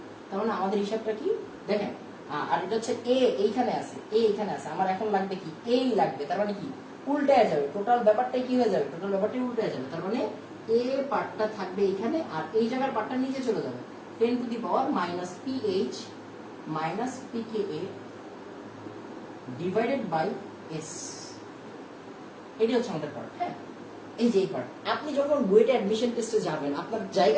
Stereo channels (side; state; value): both; identical; correlation 1.00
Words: তার মানে আমাদের হিসাবটা কি দেখেন, আর এটা হচ্ছে এ এইখানে আছে, আমার এখন লাগবে কি, এই লাগবে। তার মানে কি, উল্টে যাবে, টোটাল ব্যাপারটাই কি হয়ে যাবে, টোটাল ব্যাপারটাই উল্টে যাবে। তার মানে এ পার্টটা থাকবে এখানে, আর এই জায়গার পার্টটা নিচে চলে যাবে। 10⁻⁻PH minus pKa divided by S. এটি হচ্ছে আমাদের পার্ট। হ্যাঁ, এই যে এই পার্ট। আপনি যখন বুয়েটে অ্যাডমিশন টেস্টে যাবেন, আপনার